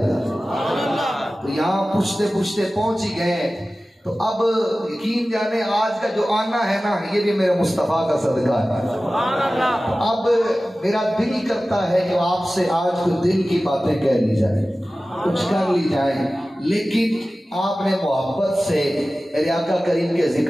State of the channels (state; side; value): normal; both; correlation 0.96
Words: گا۔ تو یہاں پوچھتے پوچھتے پہنچ ہی گئے، تو اب یقین جانے آج کا جو آنا ہے نا، یہ بھی میرے مصطفیٰ کا صدقہ ہے۔ اب میرا دل ہی کرتا ہے کہ آپ سے آج کچھ دل کی باتیں کہہ لی جائیں، کچھ کر لی جائیں، لیکن آپ نے محبت سے میرے آقا کریم کے